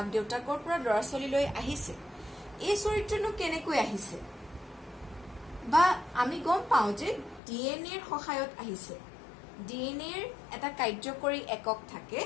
দেউতাকৰ পৰা লৰা ছোৱালীলৈ আহিছে এই চৰিত্ৰটো কেনেকৈ আহিছে বা আমি গম পাওঁ যে ডিএনএৰ সহায়ত আহিছে ডিএনএৰ এটা কাৰ্যকৰী একক থাকে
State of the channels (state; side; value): drops out; right; at 7.4 s